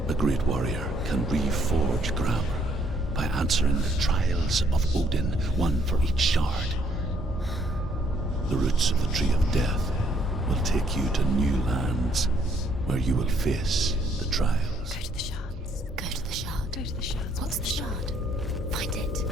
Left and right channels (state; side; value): normal; both; correlation 0.68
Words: a great warrior can reforge Gramr by answering the trials of Odin, one for each shard. The roots of the Tree of Death will take you to new lands where you will face the trials. Go to the shards. Go to the shard. go to the shards. What's the shard? Find it.